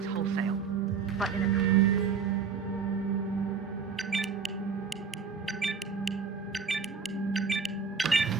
wholesale. But in a...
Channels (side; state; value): left; quieter; 5.8 dB